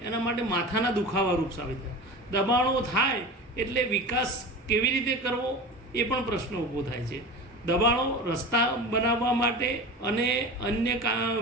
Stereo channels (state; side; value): normal; both; correlation 0.32